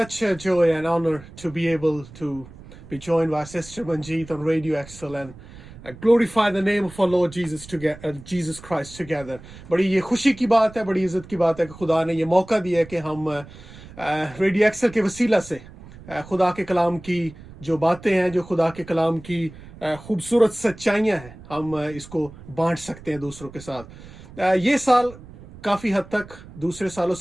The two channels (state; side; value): noise; right; rumble, 18 dB below the sound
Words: a joy and honor to be able to be joined by Sister Manjeet on Radio Excel and glorify the name of our Lord Jesus Christ together. बड़ी ये खुशी की बात है, बड़ी इज्जत की बात है कि खुदा ने ये मौका दिया है कि हम रेडियो एक्सेल के वसीला से खुदा के कलाम की जो बातें हैं, जो खुदा के कलाम की खूबसूरत सच्चाइयाँ हैं, हम इसको बांट सकते हैं दूसरों के साथ। ये साल काफ़ी हद तक दूसरे सालों